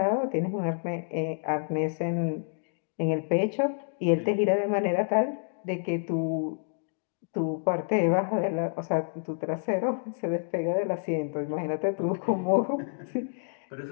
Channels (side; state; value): right; silent; digital silence